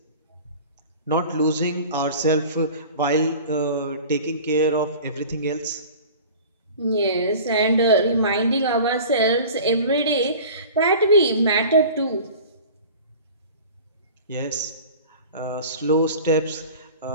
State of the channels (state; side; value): inverted; both; correlation -0.40